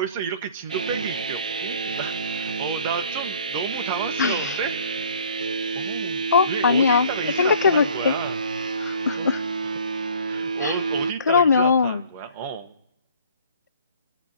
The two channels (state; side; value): inverted; both; correlation -0.53